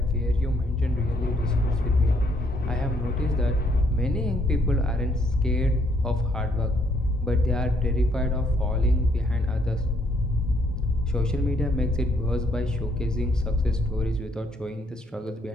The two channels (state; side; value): normal; both; correlation 0.69